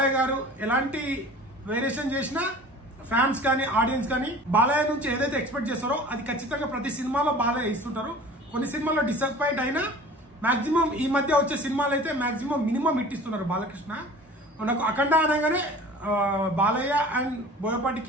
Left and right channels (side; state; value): both; normal; correlation 0.42